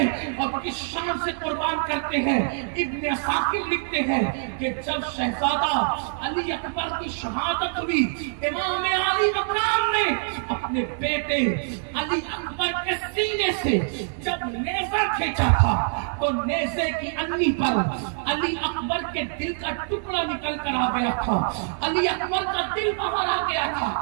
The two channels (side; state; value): left; silent; 59 dB below the other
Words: اور کس شان سے قربان کرتے ہیں۔ ابن عساکر لکھتے ہیں کہ جب شہزادہ علی اکبر کی شہادت ہوئی، امام علی مقام نے اپنے بیٹے علی اکبر کے سینے سے جب نیزہ کھینچا تھا تو نیزے کی انی پر علی اکبر کے دل کا ٹکڑا نکل کر آ گیا تھا، علی اکبر کا دل باہر آ گیا تھا۔